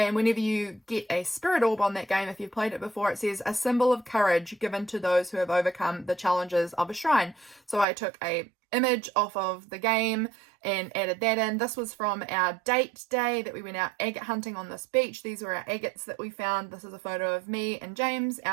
whenever you get a spirit orb on that game, if you've played it before, it says, "A symbol of courage given to those who have overcome the challenges of a shrine." So I took a image off of the game and added that in. This was from our date day that we went out agate hunting on this beach. These were our agates that we found. This is a photo of me and James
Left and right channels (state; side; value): drops out; left; at 7.9 s